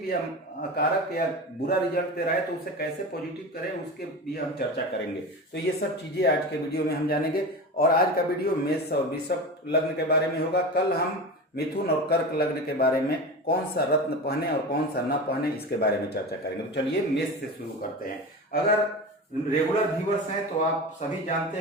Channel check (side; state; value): both; normal; correlation 0.27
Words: या कारक या बुरा रिजल्ट दे रहा है तो उसे कैसे पॉजिटिव करें, उसके भी हम चर्चा करेंगे। तो ये सब चीजें आज के वीडियो में हम जानेंगे। और आज का वीडियो मेष और वृषभ लग्न के बारे में होगा। कल हम मिथुन और कर्क लग्न के बारे में, कौन सा रत्न पहने और कौन सा न पहने, इसके बारे में चर्चा करेंगे। तो चलिए मेष से शुरू करते हैं। अगर रेगुलर व्यूअर्स हैं तो आप सभी